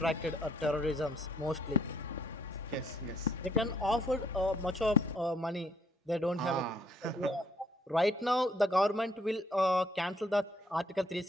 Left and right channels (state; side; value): normal; both; correlation 0.66